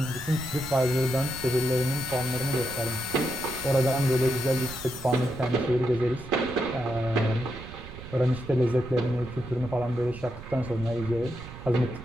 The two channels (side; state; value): right; noise; rumble, 14 dB below the sound